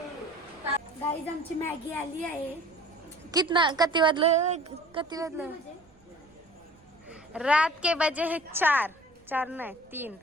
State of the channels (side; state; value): right; noise; rumble, 30 dB below the sound